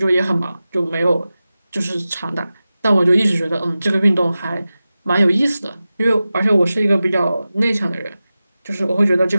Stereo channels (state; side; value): inverted; both; correlation -0.95